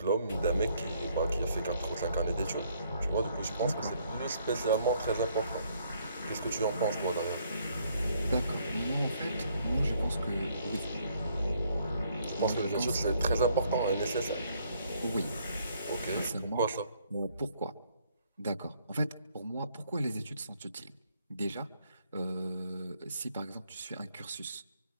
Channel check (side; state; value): both; inverted; correlation -0.68